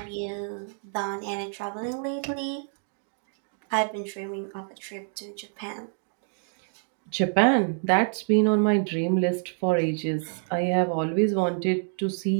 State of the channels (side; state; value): left; silent; 60 dB below the other